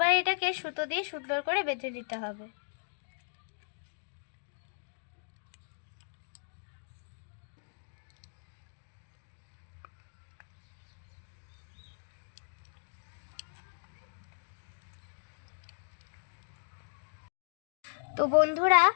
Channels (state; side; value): silent; right; digital silence